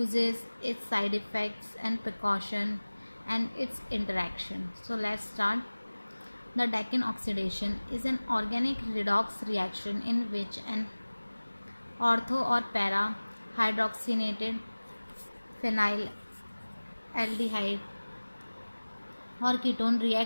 its side effects and precaution, and its interaction. So let's start. The Dakin oxidation is an organic redox reaction in which an ortho or para hydroxynated phenyl aldehyde or ketone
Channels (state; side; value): inverted; both; correlation -1.00